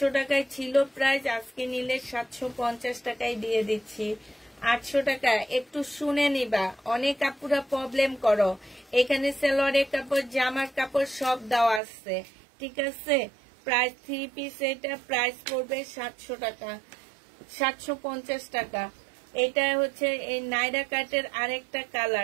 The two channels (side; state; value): left; drops out; at 11.8 s